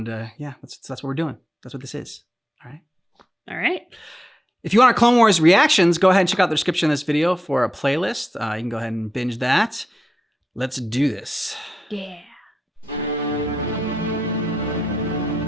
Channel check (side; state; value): both; normal; correlation 0.89